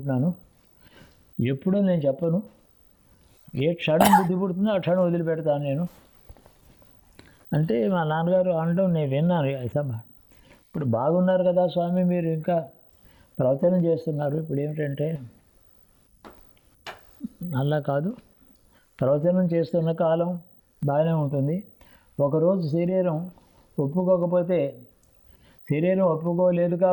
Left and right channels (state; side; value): identical; both; correlation 1.00